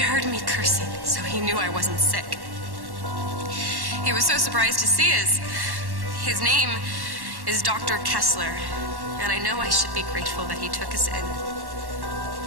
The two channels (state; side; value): late; left; 1.1 ms